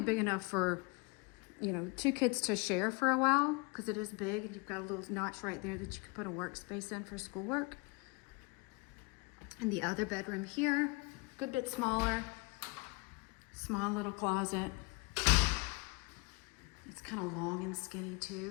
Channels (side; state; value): right; quieter; 27.8 dB